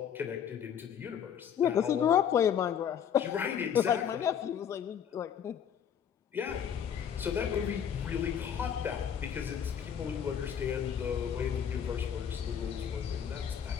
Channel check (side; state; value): right; quieter; 8.4 dB